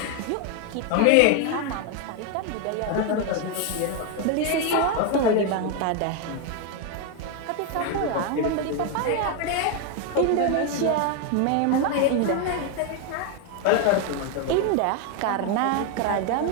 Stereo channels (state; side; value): different; both; correlation 0.01